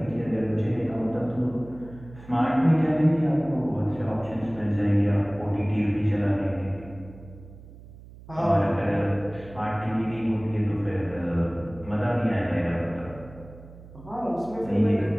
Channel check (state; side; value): noise; right; hum, 19 dB below the sound